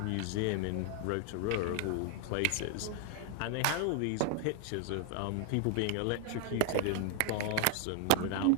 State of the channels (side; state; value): both; different; correlation 0.00